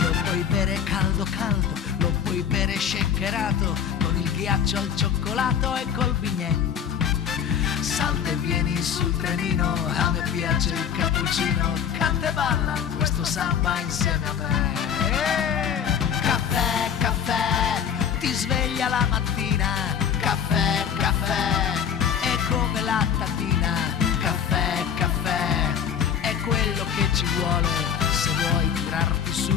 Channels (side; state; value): right; quieter; 8.0 dB